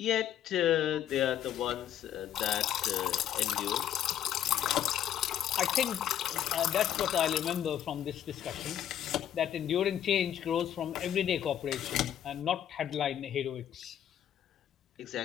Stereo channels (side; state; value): right; quieter; 10.4 dB